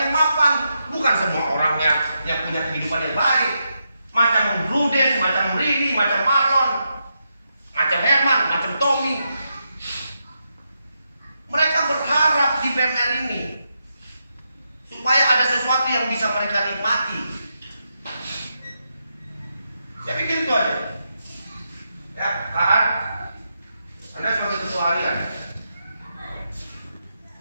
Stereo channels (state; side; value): inverted; both; correlation -0.84